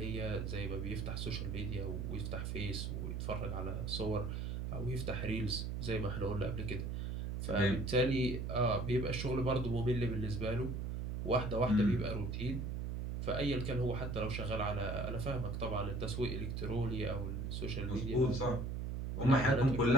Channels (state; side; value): noise; right; hum, 3 dB below the sound